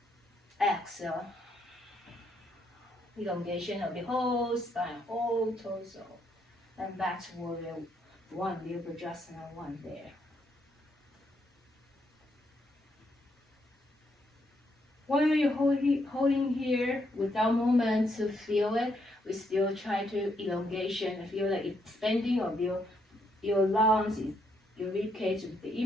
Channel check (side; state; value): both; normal; correlation 0.76